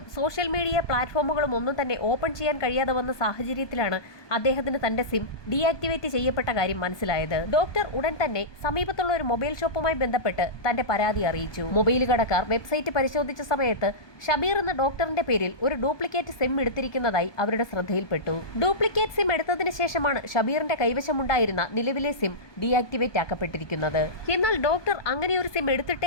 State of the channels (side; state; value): right; late; 1.2 ms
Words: സോഷ്യൽ മീഡിയ പ്ലാറ്റ്ഫോമുകളും ഒന്നും തന്നെ ഓപ്പൺ ചെയ്യാൻ കഴിയാതെ വന്ന സാഹചര്യത്തിലാണ് അദ്ദേഹത്തിന് തന്റെ സിം ഡീആക്ടിവേറ്റ് ചെയ്യപ്പെട്ട കാര്യം മനസ്സിലായത്. ഡോക്ടർ ഉടൻ തന്നെ സമീപത്തുള്ള ഒരു മൊബൈൽ ഷോപ്പുമായി ബന്ധപ്പെട്ട് തന്റെ പരാതി അറിയിച്ചു. മൊബൈൽ കടക്കാർ വെബ്സൈറ്റ് പരിശോധിച്ച സമയത്ത് ഷബീർ എന്ന ഡോക്ടറിന്റെ പേരിൽ ഒരു ഡ്യൂപ്ലിക്കേറ്റ് സിം എടുത്തിരിക്കുന്നതായി അവരുടെ ശ്രദ്ധയിൽപ്പെട്ടു. ഡ്യൂപ്ലിക്കേറ്റ് സിം എടുത്തതിന് ശേഷമാണ് ഷബീറിന്റെ കൈവശമുണ്ടായിരുന്ന നിലവിലെ സിം ഡീആക്ടിവേറ്റ് ആക്കപ്പെട്ടിരിക്കുന്നത്. എന്നാൽ ഡോക്ടർ അങ്ങനെ ഒരു സിം